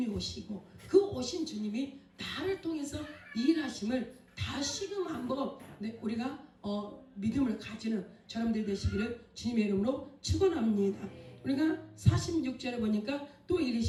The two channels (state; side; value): identical; both; correlation 1.00